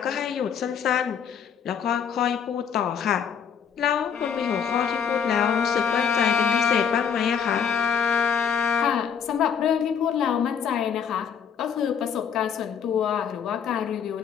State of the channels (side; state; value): right; quieter; 7.4 dB